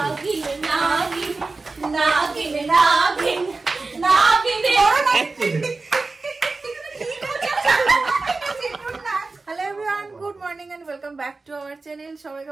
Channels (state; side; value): quieter; left; 3.7 dB